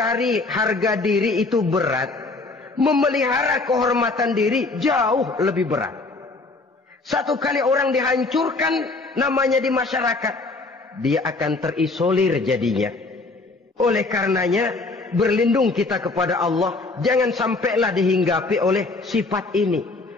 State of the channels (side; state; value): right; quieter; 3.5 dB